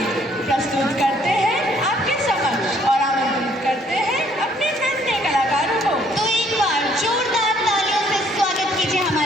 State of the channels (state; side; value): normal; both; correlation 0.64